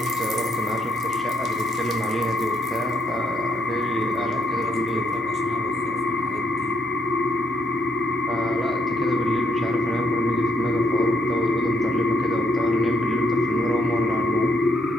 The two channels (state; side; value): noise; right; hum, 25 dB below the sound